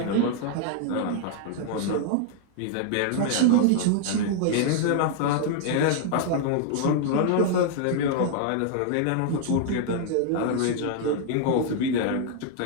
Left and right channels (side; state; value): both; different; correlation 0.00